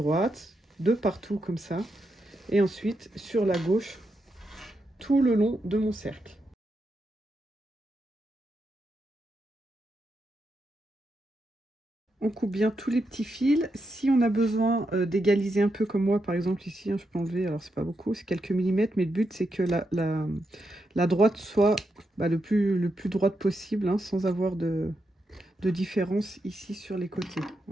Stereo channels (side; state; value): both; normal; correlation 0.84